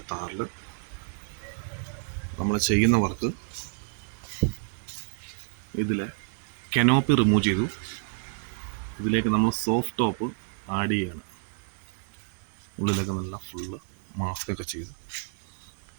താറിൽ നമ്മൾ ചെയ്യുന്ന വർക്ക്, ഇതിലെ കനോപ്പി റിമൂവ് ചെയ്തു. ഇതിലേക്ക് നമ്മൾ സോഫ്റ്റ് ടോപ്പ് ആഡ് ചെയ്യാണ്. ഉള്ളിലൊക്കെ നല്ല ഫുള്ള് മാസ്കൊക്കെ ചെയ്ത്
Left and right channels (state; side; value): silent; left; digital silence